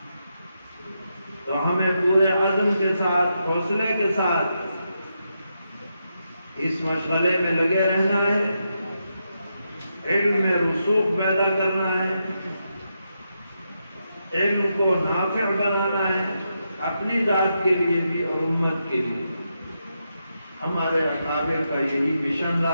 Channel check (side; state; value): both; inverted; correlation -0.84